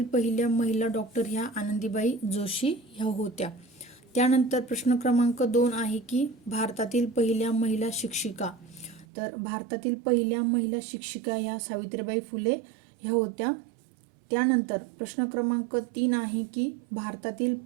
पहिल्या महिला डॉक्टर ह्या आनंदीबाई जोशी ह्या होत्या। त्यानंतर प्रश्न क्रमांक 2 आहे की भारतातील पहिल्या महिला शिक्षिका। तर भारतातील पहिल्या महिला शिक्षिका ह्या सावित्रीबाई फुले ह्या होत्या। त्यानंतर प्रश्न क्रमांक 3 आहे की भारतातील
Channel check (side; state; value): left; drops out; at 9.1 s